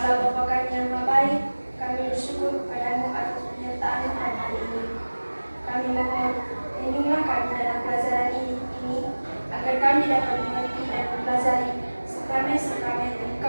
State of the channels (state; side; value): inverted; both; correlation -1.00